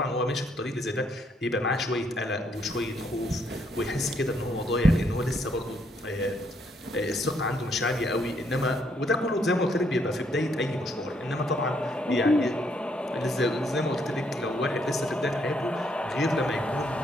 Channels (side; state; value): both; normal; correlation 0.72